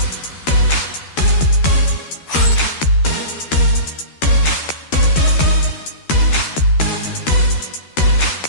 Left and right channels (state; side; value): late; right; 13 ms